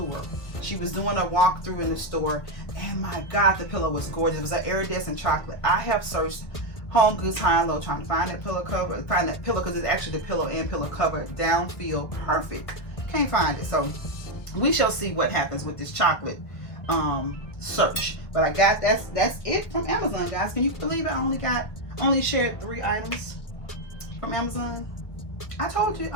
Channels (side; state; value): right; late; 1.8 ms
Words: She was doing a walkthrough in the store, and my God, the pillow was gorgeous. It was an iridescent chocolate. I have searched Home Goods high and low trying to find that pillow cover, find that pillow, because it's actually the pillow and pillow cover down, feel perfect. Can't find it. So we shall see what happens with this chocolate search. But I got, that's it from Amazon, guys. Can you believe I only shared 3 items from Amazon? I told you,